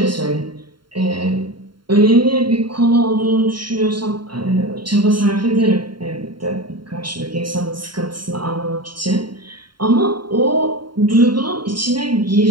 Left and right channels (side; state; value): left; late; 0.72 ms